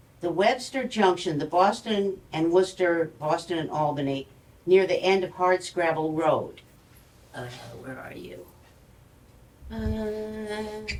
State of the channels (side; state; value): both; identical; correlation 1.00